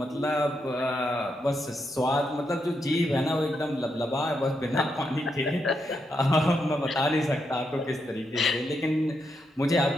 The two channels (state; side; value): normal; both; correlation 0.82